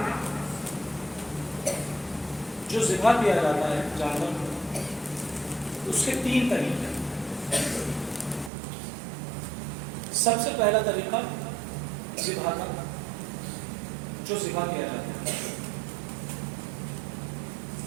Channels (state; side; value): drops out; left; at 8.5 s